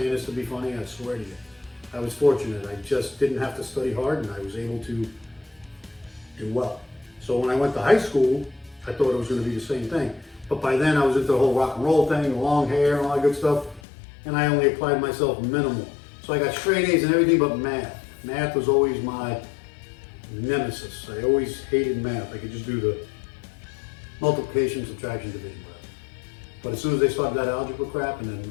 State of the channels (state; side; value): drops out; right; at 13.8 s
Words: this to be funny, I swear to you. I was fortunate. I just didn't have to study hard, and I was able to do well. So when I went to high school, I thought it was going to be the same thing. But by then I was into the whole rock and roll thing, the long hair and all that good stuff. And I only applied myself minimal. So I got straight A's in everything but math. Math was always my nemesis. I always hated math. I could just do the multiplication, subtraction, division. But as soon as they started that algebra crap, and then